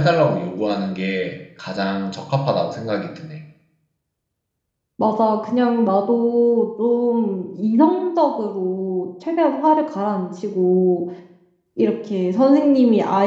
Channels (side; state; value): both; identical; correlation 1.00